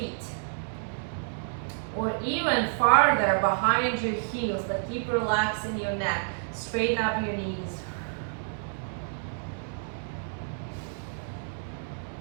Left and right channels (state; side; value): silent; left; 58 dB below the other